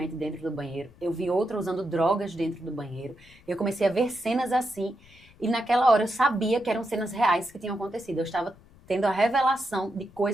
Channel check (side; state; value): left; noise; rumble, 26 dB below the sound